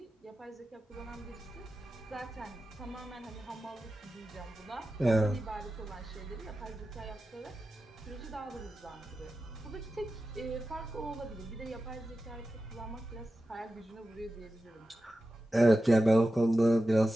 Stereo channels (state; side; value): normal; both; correlation 0.93